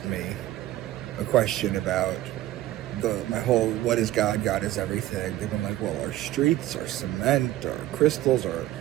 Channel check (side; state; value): left; quieter; 14.6 dB